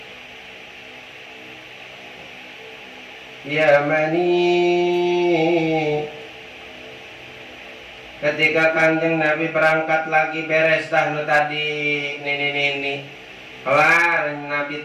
Yamani. Ketika Kanjeng Nabi berangkat lagi beres tadi nenek kelar,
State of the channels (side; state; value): both; identical; correlation 1.00